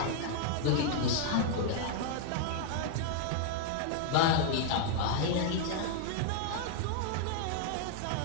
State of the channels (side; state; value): both; different; correlation 0.00